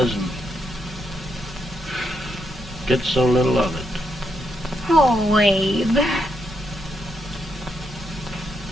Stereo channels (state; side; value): normal; both; correlation 0.80